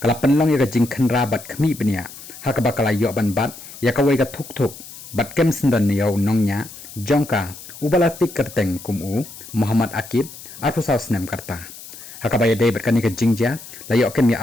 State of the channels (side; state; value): left; noise; hiss, 15 dB below the sound